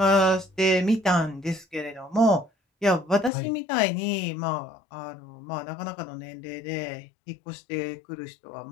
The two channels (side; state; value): right; drops out; at 3.3 s